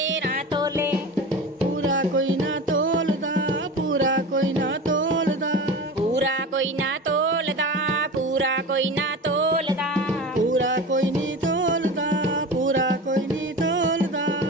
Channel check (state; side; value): normal; both; correlation 0.31